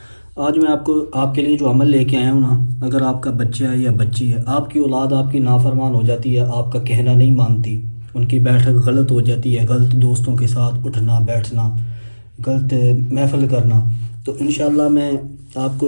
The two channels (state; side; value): inverted; both; correlation -1.00